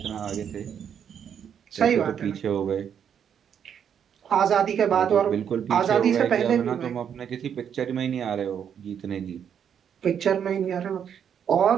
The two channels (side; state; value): left; quieter; 8.3 dB